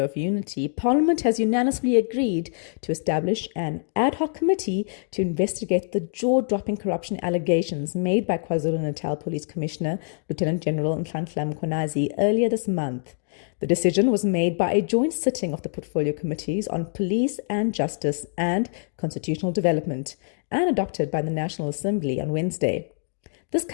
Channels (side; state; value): right; silent; 62 dB below the other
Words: of unity, Parliament has unanimously agreed to establish an ad hoc committee to investigate the jaw-dropping corruption allegations made by KwaZulu-Natal Police Commissioner Lieutenant General Nhlanhla Mkhwanazi earlier this month. The decision was made by a joint sitting of the portfolio committees on police and justice and constitutional development, and adopted by the National Assembly on Wednesday. This